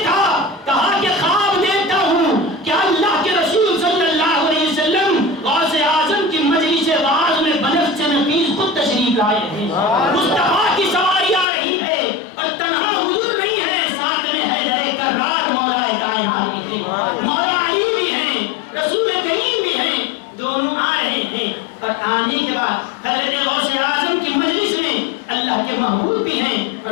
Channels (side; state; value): right; drops out; at 11.5 s